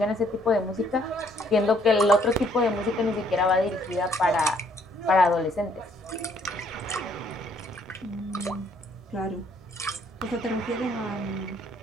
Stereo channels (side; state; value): both; normal; correlation 0.66